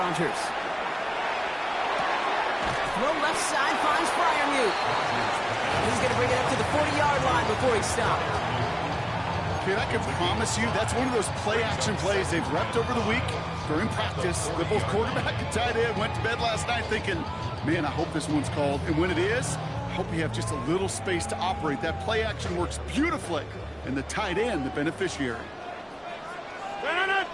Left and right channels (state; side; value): identical; both; correlation 1.00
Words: Throw left side finds Freiermuth. He's going to bring it up to the 40-yard line before he stopped. Kid, I can promise you that's one of those play-action plays they've repped over the week during practice. The both quarterback and tight end went to bed last night thinking, man, I hope this one's called. And when it is, I hope you have just a little space to operate. That play action works beautifully, and the tight end, the beneficiary.